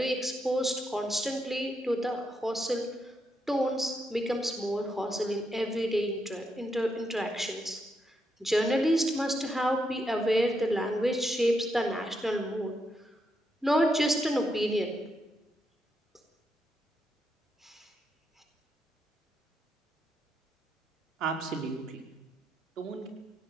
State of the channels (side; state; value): both; normal; correlation 0.81